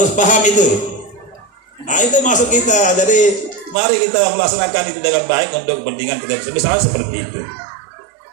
paham itu. Nah itu masuk kita. Jadi mari kita melaksanakan itu dengan baik untuk kepentingan kita misalnya seperti itu.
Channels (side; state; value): left; drops out; at 3.8 s